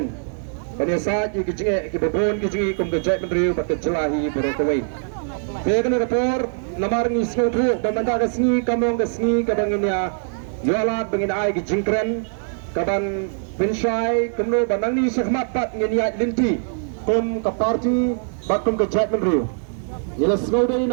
pada saat ke sini ke bebon ke sini kum kerja kenduri bagi jelahi berokawai Pekan rapor namar ni semua dan mentah ke sini kamong ke sini kabanginnya yolat bangin ai ke jingkren kaban pensyai kemlo banang ni sekhmat pat ngeniat linti kum ke parti bakum ke kerja kenduri Ia semua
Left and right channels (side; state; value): left; silent; 58 dB below the other